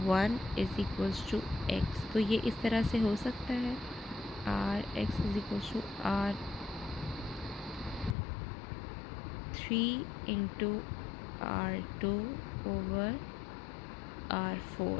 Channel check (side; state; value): right; drops out; at 8.2 s